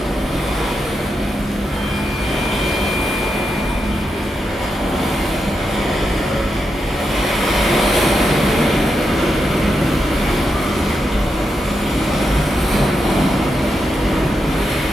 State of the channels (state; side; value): normal; both; correlation 0.85